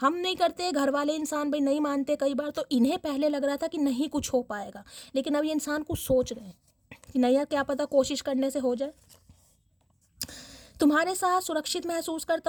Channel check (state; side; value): identical; both; correlation 1.00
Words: नहीं करते, घर वाले इंसान भाई नहीं मानते कई बार, तो इन्हें पहले लग रहा था कि नहीं कुछ हो पाएगा, लेकिन अब ये इंसान कुछ सोच रहे हैं कि नहीं यार क्या पता कोशिश करने से हो जाए। तुम्हारे साथ सुरक्षित महसूस करता